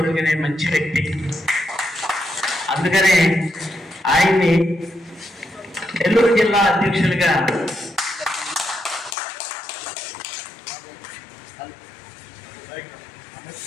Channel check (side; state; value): right; drops out; at 9.2 s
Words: మంచి వ్యక్తి. అందుకనే ఆయన్ని నెల్లూరు జిల్లా అధ్యక్షులుగా